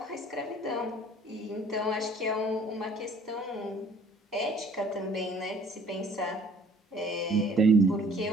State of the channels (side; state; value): both; normal; correlation 0.55